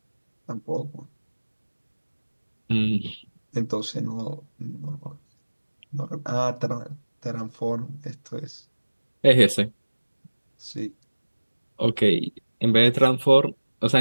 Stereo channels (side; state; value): both; inverted; correlation -1.00